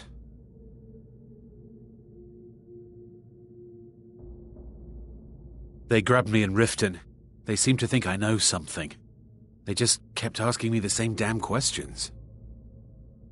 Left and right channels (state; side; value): identical; both; correlation 1.00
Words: They grabbed me in Riften. They seem to think I know something. They just kept asking me the same damn questions.